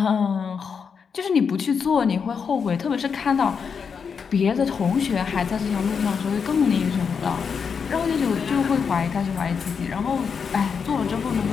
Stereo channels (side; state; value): right; quieter; 6.2 dB